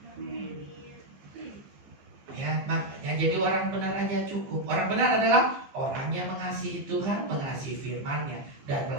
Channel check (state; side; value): late; left; 15 ms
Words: Ya, makanya jadi orang benar aja cukup. Orang benar adalah orang yang mengasihi Tuhan, mengasihi firman-Nya dan